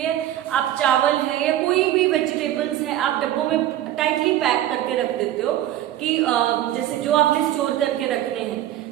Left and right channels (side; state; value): left; quieter; 13.0 dB